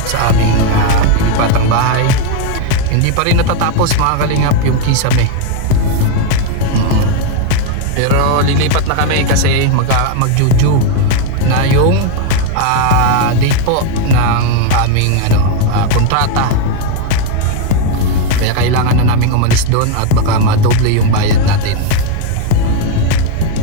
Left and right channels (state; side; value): different; both; correlation 0.01